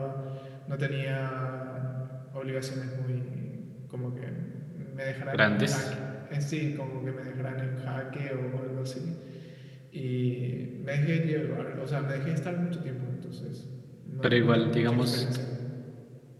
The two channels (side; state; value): both; identical; correlation 1.00